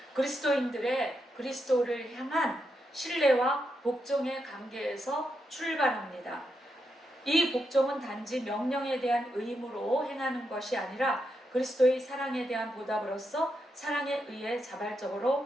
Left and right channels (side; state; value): both; normal; correlation 0.83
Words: 그리스도인들의 그리스도를 향한 신뢰와 복종의 관계에서 출발합니다. 이 복종은 단지 명령에 대한 의무로 행하는 것이 아니라 그리스도의 사랑에 대한 보답으로서 사랑에 의해